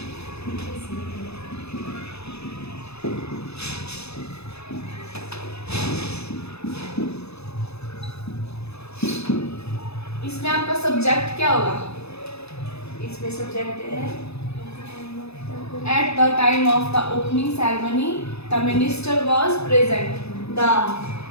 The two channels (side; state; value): right; late; 0.79 ms